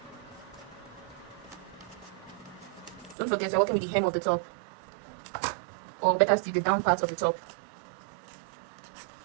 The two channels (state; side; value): drops out; left; at 3.2 s